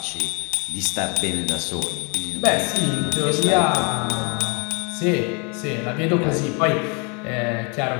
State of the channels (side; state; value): right; quieter; 33.8 dB